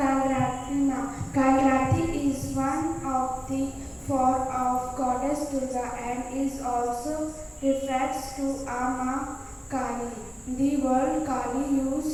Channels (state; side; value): identical; both; correlation 1.00